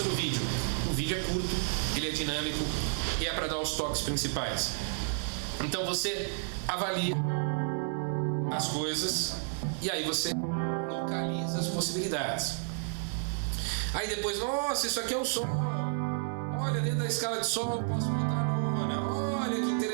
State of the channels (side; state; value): left; silent; 57 dB below the other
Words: no vídeo. O vídeo é curto, ele é dinâmico e é para dar os toques principais. Então você avalia as coisas e aí você localiza as possibilidades. Aí depois, nossa, isso aqui é o Sol. Olha, dentro da escala de Sol eu posso botar a nona. Olha que